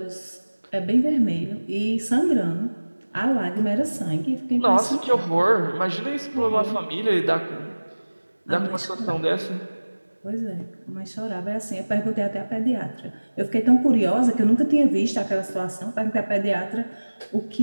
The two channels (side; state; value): both; inverted; correlation -1.00